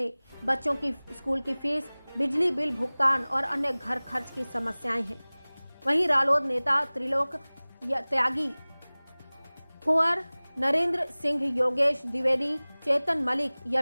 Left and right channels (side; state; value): both; inverted; correlation -1.00